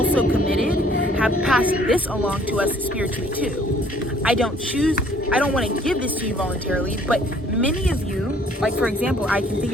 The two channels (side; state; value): both; normal; correlation 0.59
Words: committed have passed this along to us spiritually too. I don't want to give this to you voluntarily, but many of you, like for example, I can think